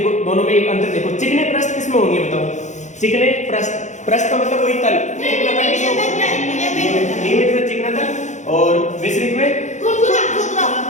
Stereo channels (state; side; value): late; right; 0.35 ms